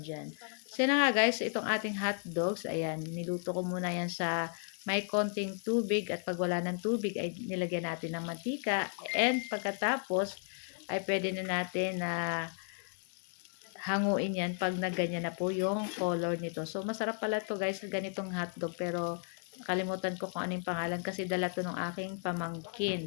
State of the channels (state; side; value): silent; right; 55 dB below the other